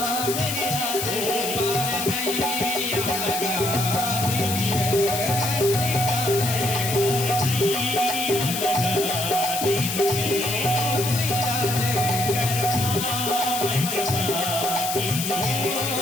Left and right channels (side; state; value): left; noise; hiss, 3 dB below the sound